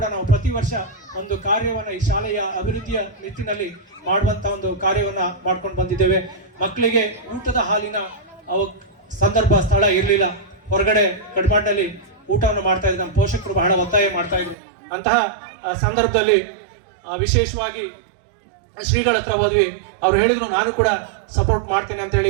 ನಾವು ಪ್ರತಿ ವರ್ಷ ಒಂದು ಕಾರ್ಯವನ್ನು ಈ ಶಾಲೆಯ ಅಭಿವೃದ್ಧಿಯ ನಿಟ್ಟಿನಲ್ಲಿ ಮಾಡುವಂತ ಒಂದು ಕಾರ್ಯವನ್ನ ಮಾಡ್ಕೊಂಡು ಬಂದಿದ್ದೇವೆ. ಮಕ್ಕಳಿಗೆ ಊಟದ ಹಾಲಿನ ಸಂದರ್ಭ ಸ್ಥಳ ಇರಲಿಲ್ಲ, ಹೊರಗಡೆ ಕಡ್ಮಾಡ್ನಲ್ಲಿ ಊಟವನ್ನು ಮಾಡ್ತಾ ಇದ್ರು. ನಮ್ಮ ಪೋಷಕರು ಬಹಳ ಒತ್ತಾಯ ಮಾಡ್ತಾ ಇದ್ರು. ಅಂತಹ ಸಂದರ್ಭದಲ್ಲಿ ವಿಶೇಷವಾಗಿ ಶ್ರೀಗಳ ಹತ್ರ ಹೋದ್ವಿ. ಅವ್ರು ಹೇಳಿದ್ರು ನಾನು ಕೂಡ ಸಪೋರ್ಟ್ ಮಾಡ್ತೇನೆ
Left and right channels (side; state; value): left; drops out; at 14.6 s